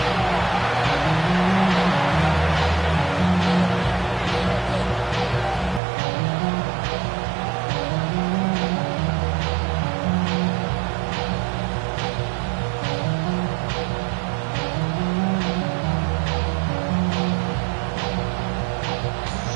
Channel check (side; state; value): left; drops out; at 5.8 s